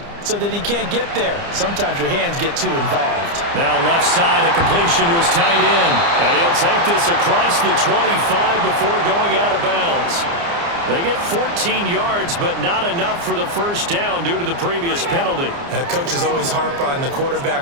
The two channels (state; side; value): late; left; 29 ms